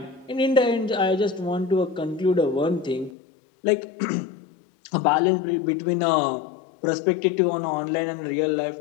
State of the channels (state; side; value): drops out; right; at 3.1 s